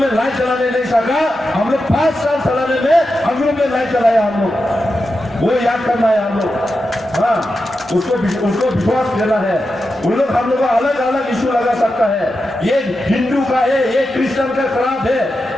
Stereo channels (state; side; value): normal; both; correlation 0.89